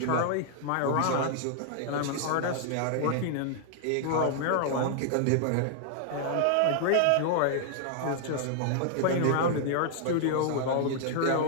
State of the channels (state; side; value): different; both; correlation 0.00